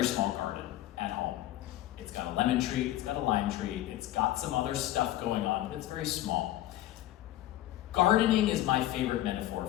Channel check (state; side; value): quieter; right; 14.3 dB